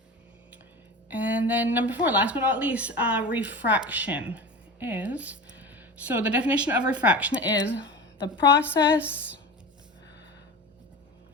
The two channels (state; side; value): normal; both; correlation 0.31